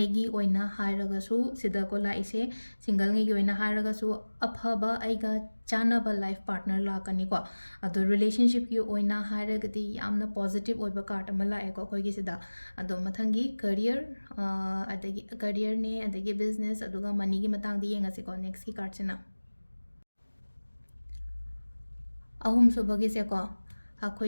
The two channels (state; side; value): inverted; both; correlation -1.00